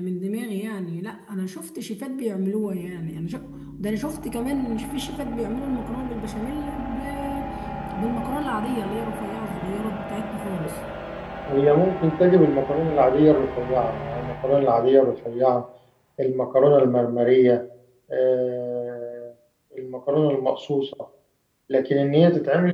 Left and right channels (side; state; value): both; identical; correlation 1.00